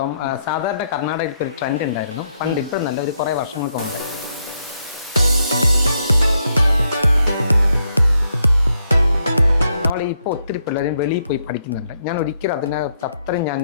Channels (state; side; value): inverted; both; correlation -0.77